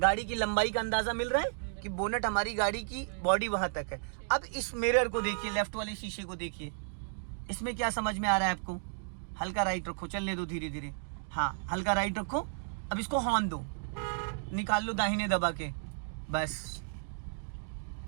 की लंबाई का अंदाजा मिल रहा है कि बोनेट हमारी गाड़ी की बॉडी वहां तक है। अब इस मिरर को देखिए, लेफ्ट वाले शीशे को देखिए, इसमें क्या समझ में आ रहा है आपको? हल्का राइट रखो, चलने दो धीरे धीरे। हाँ, हल्का राइट रखो। अब इसको हॉर्न दो, निकाल लो दाहिने दबा के, बस।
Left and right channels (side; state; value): left; silent; digital silence